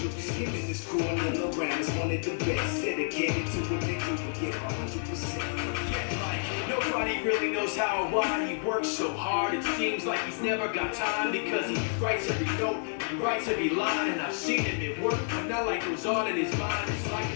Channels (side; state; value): right; silent; 58 dB below the other